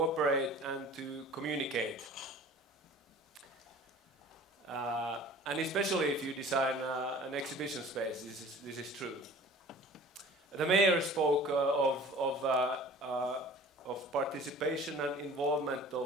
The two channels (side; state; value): both; normal; correlation 0.45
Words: and to communicate. And especially if you design an exhibition space, this is true. The mayor spoke of participation and involvement